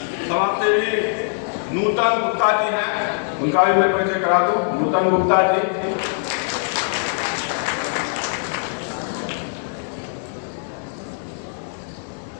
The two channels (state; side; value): silent; right; digital silence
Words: समाजसेवी नूतन गुप्ता जी हैं, उनका भी मैं परिचय करा दूं। नूतन गुप्ता जी